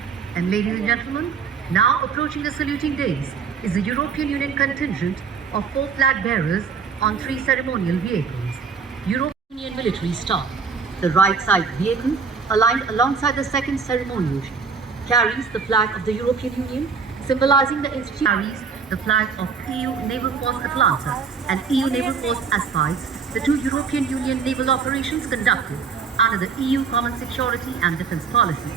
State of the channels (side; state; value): left; quieter; 5.7 dB